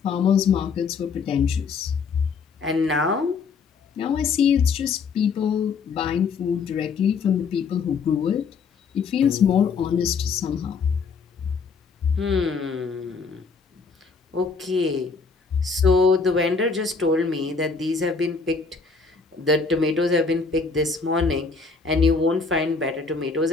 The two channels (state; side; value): quieter; right; 5.0 dB